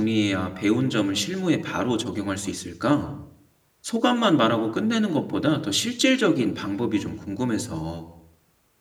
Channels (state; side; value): identical; both; correlation 1.00